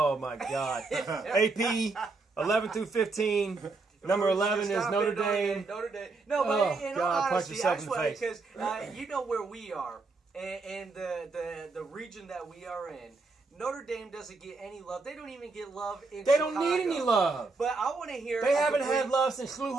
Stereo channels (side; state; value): left; quieter; 3.8 dB